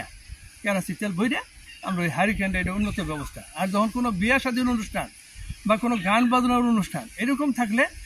কেরাসি তেল বইরা আমরা ওই হারিকেনটা, এটা উন্নত ব্যবস্থা। আর যখন কোনো বিয়া শাদীর অনুষ্ঠান বা কোনো গান বাজনার অনুষ্ঠান এরকম থাকলে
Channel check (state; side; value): identical; both; correlation 1.00